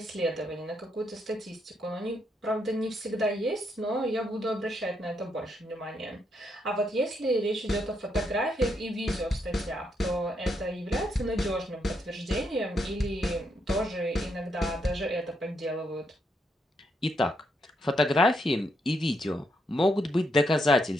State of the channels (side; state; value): both; normal; correlation 0.78